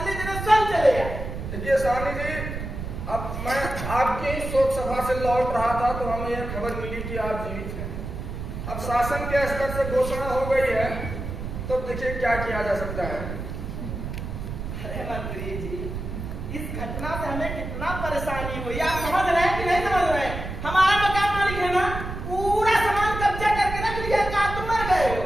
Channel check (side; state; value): right; noise; rumble, 6 dB below the sound